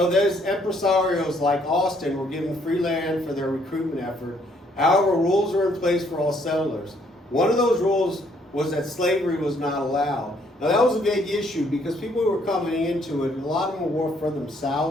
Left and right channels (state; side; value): normal; both; correlation 0.67